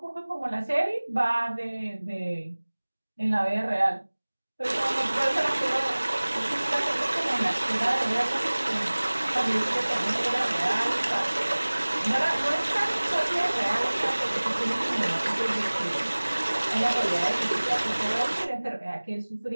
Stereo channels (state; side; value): inverted; both; correlation -1.00